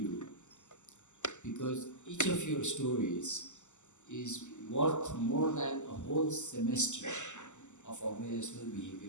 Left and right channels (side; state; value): right; late; 0.84 ms